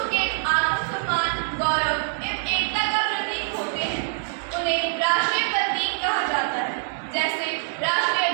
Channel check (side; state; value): left; silent; digital silence